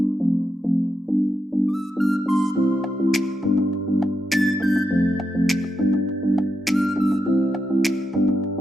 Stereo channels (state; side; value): normal; both; correlation 0.85